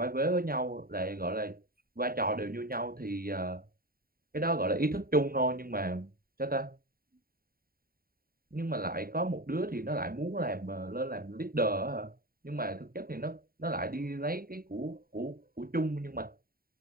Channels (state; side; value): late; left; 0.43 ms